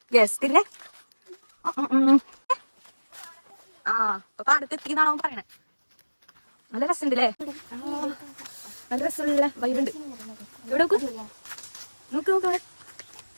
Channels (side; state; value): both; inverted; correlation -1.00